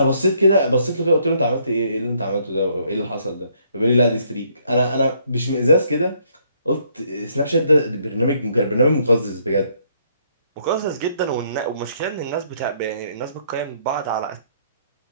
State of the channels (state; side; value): inverted; both; correlation -0.68